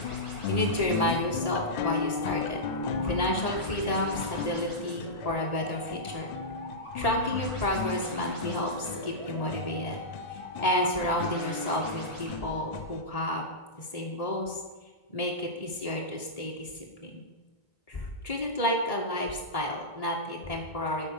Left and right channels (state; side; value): late; right; 1.8 ms